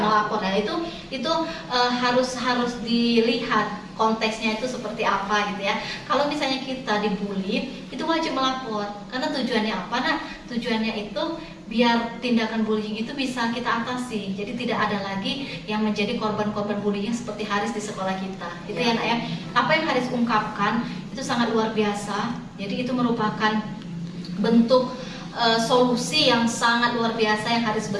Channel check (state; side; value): identical; both; correlation 1.00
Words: melapor. Nah itu harus dilihat konteksnya itu seperti apa gitu ya. Kalau misalnya kita dibully, itu wajib melapor. Karena tujuannya apa? Nah, tujuannya itu biar tindakan bullying itu bisa kita atasi. Jadi tidak ada lagi yang menjadi korban-korban bullying seperti Haris di sekolah kita. Itu ya Nak ya. Apa yang Haris ungkapkan itu sangat luar biasa. Jadi itu merupakan bentuk solusi yang sangat luar biasa yang Haris